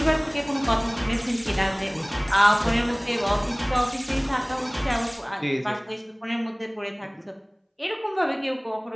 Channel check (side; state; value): both; identical; correlation 1.00